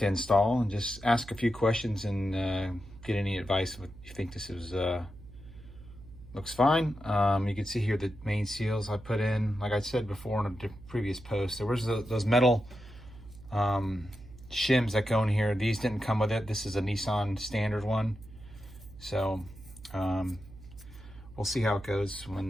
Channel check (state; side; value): noise; right; hum, 18 dB below the sound